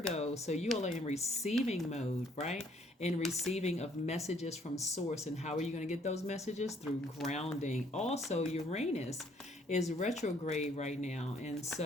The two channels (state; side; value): normal; both; correlation 0.64